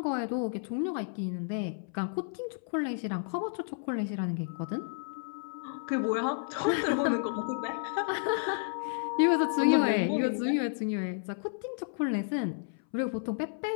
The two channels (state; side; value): silent; right; 57 dB below the other